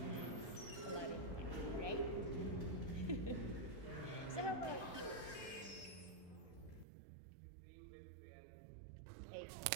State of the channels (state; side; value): drops out; left; at 6.9 s